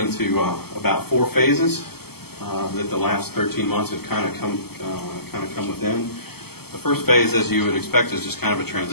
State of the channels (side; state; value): right; late; 0.96 ms